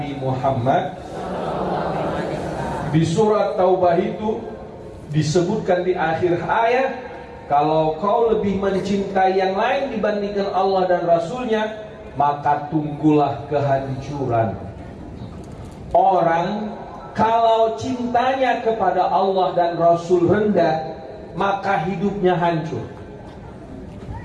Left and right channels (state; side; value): identical; both; correlation 1.00